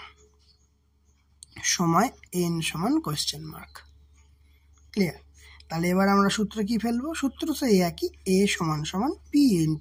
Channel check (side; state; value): both; identical; correlation 1.00